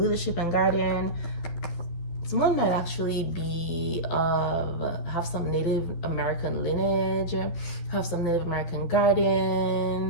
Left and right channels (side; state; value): right; late; 12 ms